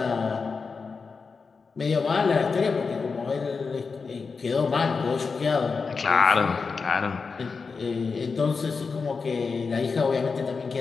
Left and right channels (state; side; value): quieter; right; 4.9 dB